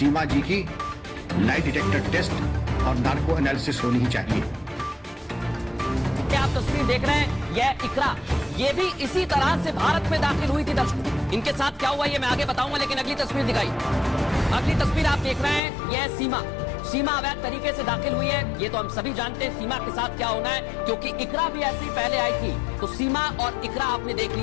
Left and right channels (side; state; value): right; drops out; at 15.6 s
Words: जी की लाई डिटेक्टर टेस्ट और नार्को एनालिसिस होनी ही चाहिए। आप तस्वीर देख रहे हैं, यह इकरा, ये भी इसी तरह से भारत में दाखिल हुई थी। दर्शकों, इनके साथ क्या हुआ ये मैं आगे बताऊंगा, लेकिन अगली तस्वीर दिखाई। अगली तस्वीर आप देख रहे हैं, यह सीमा अवैध तरीके से दाखिल हुई है। ये तो हम सभी जानते हैं सीमा के साथ क्या होना है, क्योंकि इकरा भी ऐसी पहले आई थी। तो सीमा और इकरा आपने देख